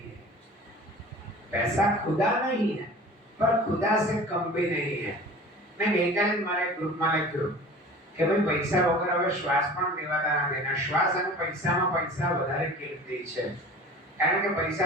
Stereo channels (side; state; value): both; normal; correlation 0.41